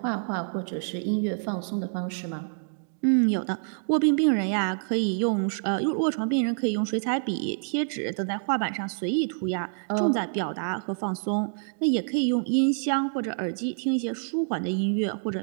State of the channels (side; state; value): left; silent; digital silence